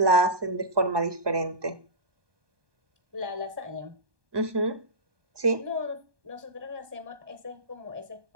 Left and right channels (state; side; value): late; left; 1.2 ms